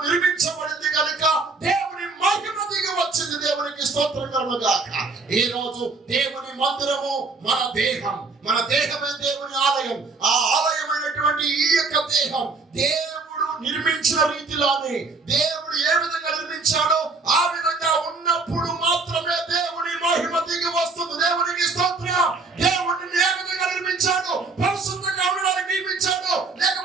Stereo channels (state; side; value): quieter; left; 4.0 dB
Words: నిర్మించబడింది కనుక దేవుని మహిమ దిగి వచ్చింది. దేవునికి స్తోత్రం కలుగును గాక. ఈ రోజు దేవుని మందిరము మన దేహం, మన దేహమే దేవుని ఆలయం. ఆ ఆలయమైనటువంటి ఈ యొక్క దేహం దేవుడు నిర్మించిన రీతిలోనే దేవుడు ఏ విధంగా నిర్మించాడో ఆ విధంగా ఉన్నప్పుడు మాత్రమే దేవుని మహిమ దిగి వస్తుంది. దేవునికి స్తోత్రం. దేవుడిని ఏ విధంగా నిర్మించాడో, పరిశుద్ధంగా ఉండడానికి నిర్మించాడో,